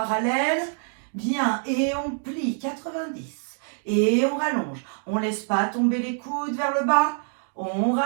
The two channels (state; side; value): silent; left; 60 dB below the other